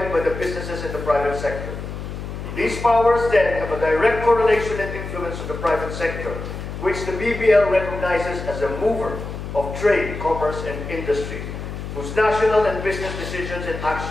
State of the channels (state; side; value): noise; left; hum, 8 dB below the sound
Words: by the businesses in the private sector. These powers then have a direct correlation and influence on the private sector, which the BBL recognizes as a mover of trade, commerce, and industry, whose national and business decisions and